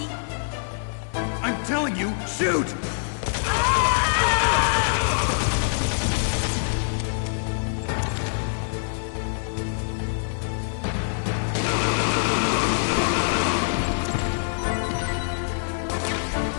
I'm telling you, shoot!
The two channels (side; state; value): right; silent; 62 dB below the other